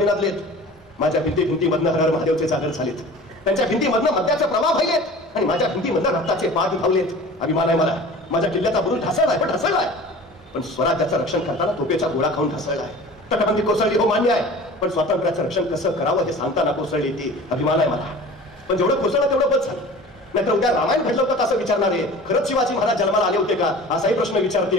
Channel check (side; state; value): both; normal; correlation 0.41